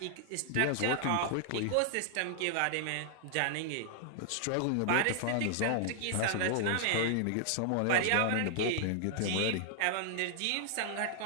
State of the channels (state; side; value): different; both; correlation -0.01